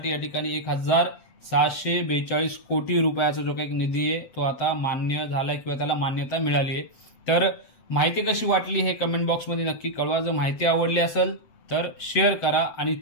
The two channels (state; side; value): late; right; 7.9 ms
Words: या ठिकाणी 1642 कोटी रुपयाचा जो काही निधी आहे तो आता मान्य झाला किंवा त्याला मान्यता मिळाली आहे। तर माहिती कशी वाटली हे कमेंट बॉक्समध्ये नक्की कळवा। जर माहिती आवडली असेल तर शेअर करा आणि